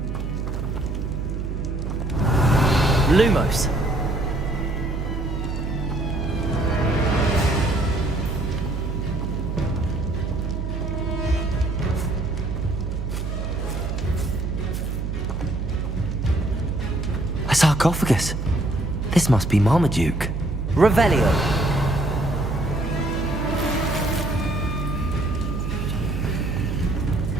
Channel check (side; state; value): right; noise; hum, 3 dB below the sound